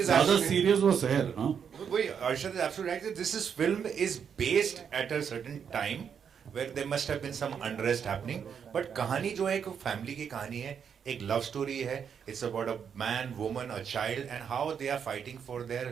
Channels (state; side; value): quieter; left; 7.4 dB